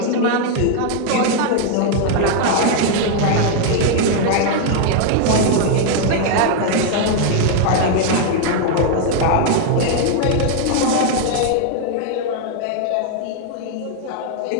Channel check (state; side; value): different; both; correlation 0.00